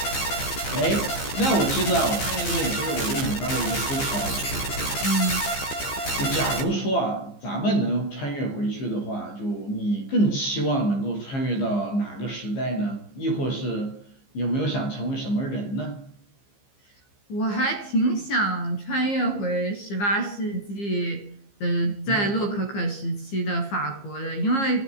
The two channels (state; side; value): late; right; 15 ms